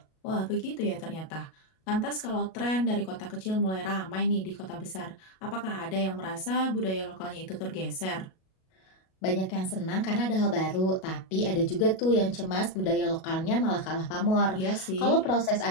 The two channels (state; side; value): late; right; 37 ms